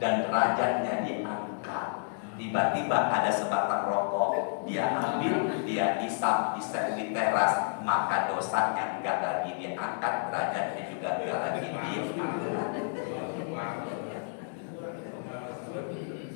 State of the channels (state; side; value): silent; right; digital silence